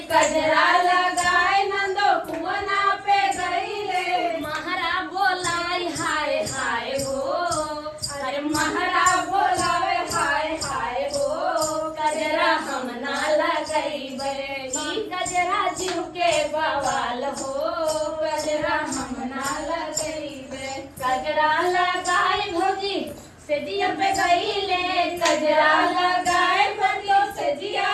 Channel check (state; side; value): identical; both; correlation 1.00